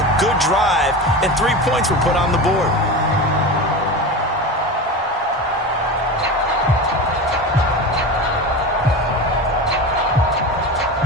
a good drive, and 3 points were put on the board.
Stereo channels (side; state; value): both; normal; correlation 0.26